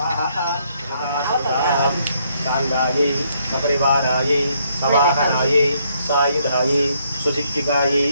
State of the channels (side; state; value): both; inverted; correlation -0.71